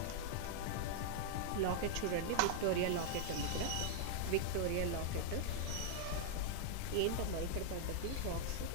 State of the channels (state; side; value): different; both; correlation 0.00